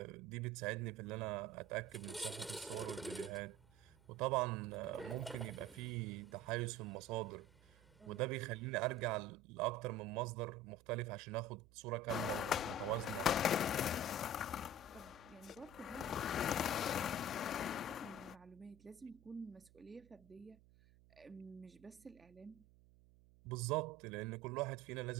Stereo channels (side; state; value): right; noise; hum, 25 dB below the sound